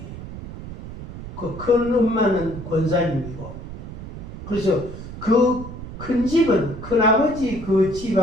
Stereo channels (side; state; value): right; noise; rumble, 11 dB below the sound